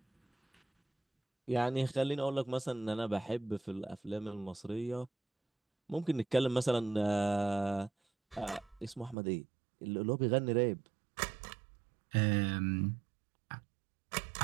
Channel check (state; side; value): drops out; left; at 9.2 s